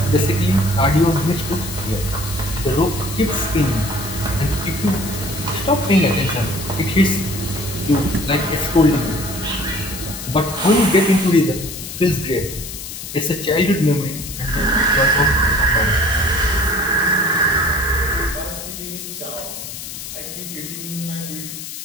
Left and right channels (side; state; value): left; noise; hiss, 9 dB below the sound